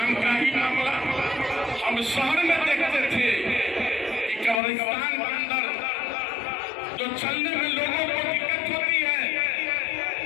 का ही मामला हम शहर में देखते थे कि कब्रिस्तान के अंदर जो चलने में लोगों को दिक्कत होती है,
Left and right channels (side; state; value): right; drops out; at 4.6 s